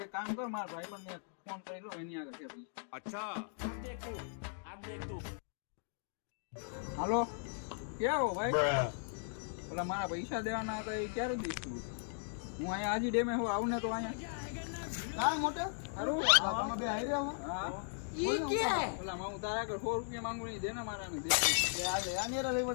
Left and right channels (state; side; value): silent; right; digital silence